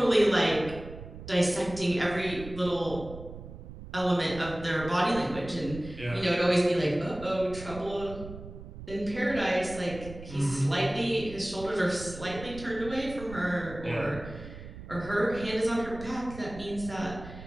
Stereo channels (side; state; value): right; noise; rumble, 13 dB below the sound